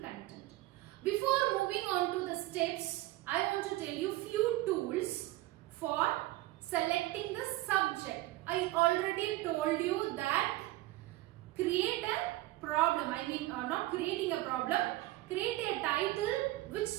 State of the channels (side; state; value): left; quieter; 17.9 dB